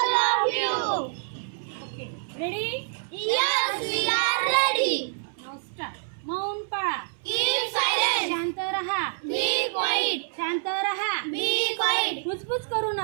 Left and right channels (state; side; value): silent; left; 60 dB below the other